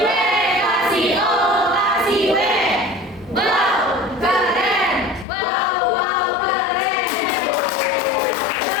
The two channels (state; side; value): drops out; right; at 5.2 s